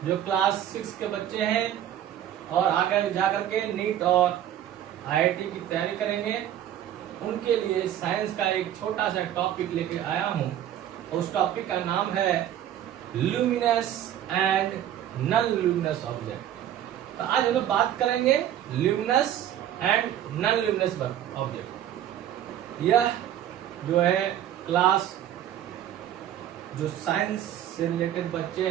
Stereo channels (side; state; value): left; quieter; 11.2 dB